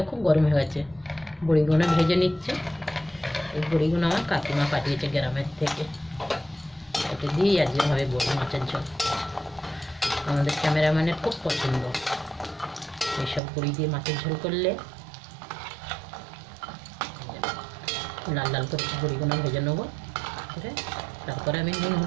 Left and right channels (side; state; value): left; drops out; at 13.4 s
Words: খুব গরম হয়ে গেছে। বড়িগুলো ভেজে নিচ্ছে। এই বড়িগুলো আমার কাকিমা পাঠিয়েছে গ্রামের থেকে, এটা দিয়েই আজকে হবে বড়ি মাছের ঝোল। আমাদের ক্যামেরাম্যানের খুব পছন্দ এইসব বড়ি দিয়ে মাছের ঝোল করলে। লাল লাল করে বড়িগুলো ভেজে নেবো, তারপরে আমি নুন